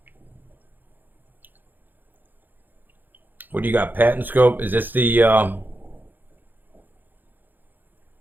What do you got? Patent scope? Is this the... Let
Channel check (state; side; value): late; left; 0.088 ms